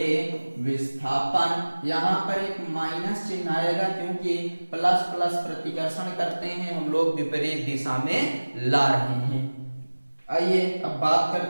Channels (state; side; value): inverted; both; correlation -1.00